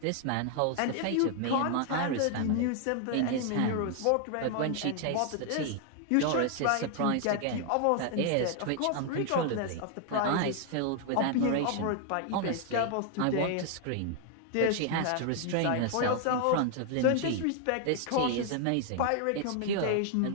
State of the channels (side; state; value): both; different; correlation 0.00